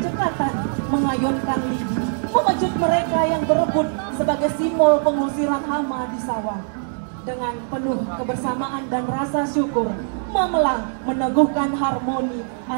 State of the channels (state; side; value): silent; left; digital silence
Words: cekatan mengayunkan lidi, memecut mereka yang berebut sebagai simbol pengusiran hama di sawah. Dengan penuh kebersamaan dan rasa syukur, Mamelang meneguhkan harmoni